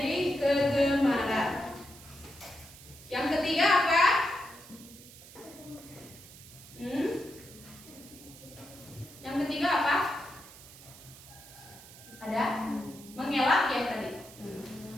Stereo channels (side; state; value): right; noise; hiss, 18 dB below the sound